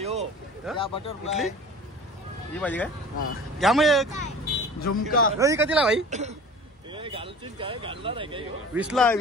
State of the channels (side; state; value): both; normal; correlation 0.40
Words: कुठली ही पाहिजे काय घ्या मग एक झुमका कधीला भाई 20ला